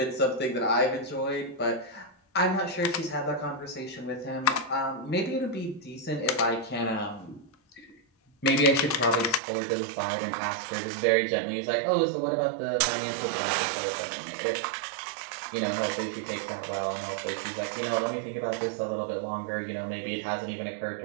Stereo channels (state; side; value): drops out; left; at 9.4 s